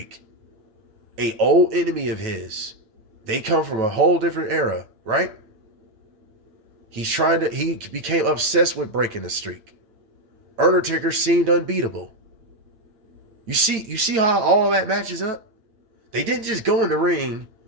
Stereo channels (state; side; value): late; left; 9.1 ms